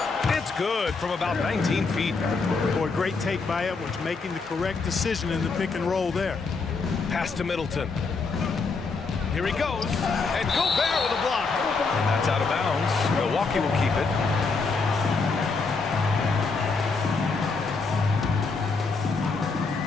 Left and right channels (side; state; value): right; quieter; 4.3 dB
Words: It's good from about 19 feet. Boy, great take by Edwards, making the correct decision in the pick and roll there. Pass to Middleton. Here he goes. And Gobert with a block. And that's out of bounds. Milwaukee will keep it.